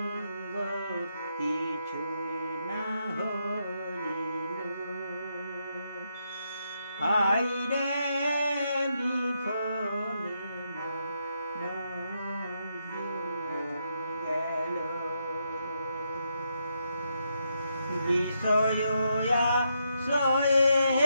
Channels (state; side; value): inverted; both; correlation -0.80